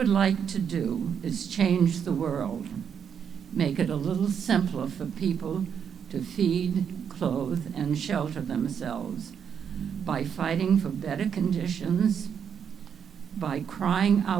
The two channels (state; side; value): quieter; left; 7.6 dB